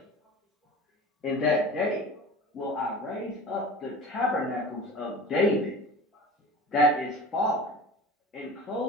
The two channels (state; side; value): normal; both; correlation 0.37